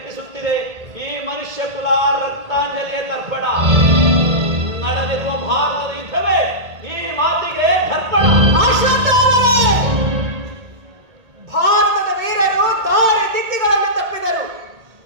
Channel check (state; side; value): late; left; 1.8 ms